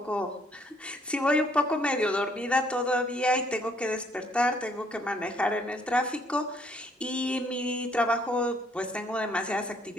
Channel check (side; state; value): both; normal; correlation 0.66